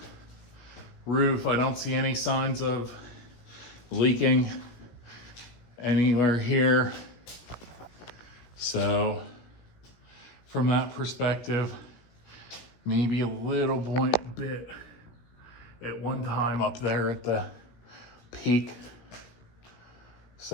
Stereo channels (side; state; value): right; late; 16 ms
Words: roof, I don't see any signs of leaking anywhere here. So from that perspective, maybe a little bit at one time up there at the peak.